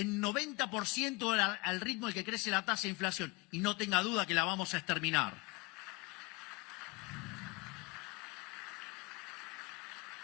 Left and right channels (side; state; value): right; quieter; 24.9 dB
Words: 90% al ritmo al que crece la tasa de inflación. Y no tenga duda que la vamos a exterminar.